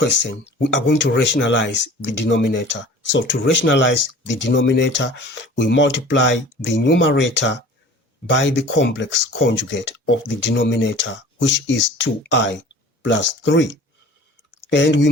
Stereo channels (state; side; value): normal; both; correlation 0.44